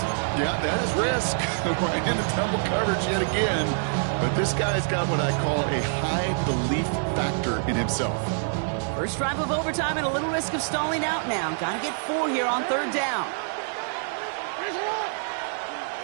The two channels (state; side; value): silent; left; digital silence